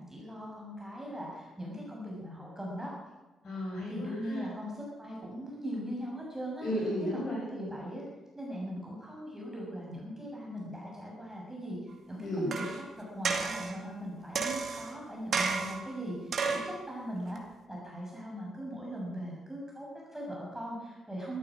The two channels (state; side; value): normal; both; correlation 0.77